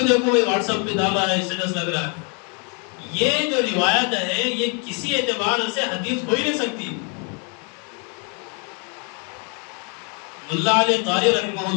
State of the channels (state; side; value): quieter; right; 36.5 dB